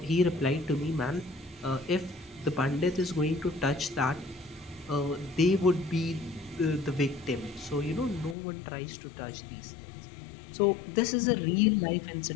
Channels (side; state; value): right; drops out; at 8.3 s